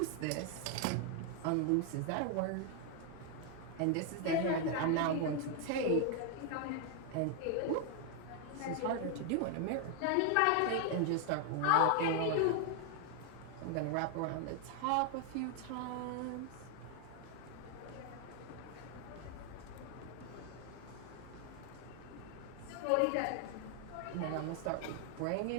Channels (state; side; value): different; both; correlation 0.00